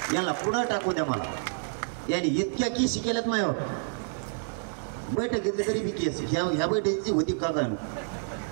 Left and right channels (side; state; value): left; silent; digital silence